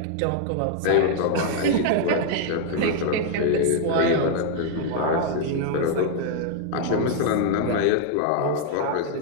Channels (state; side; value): different; both; correlation 0.00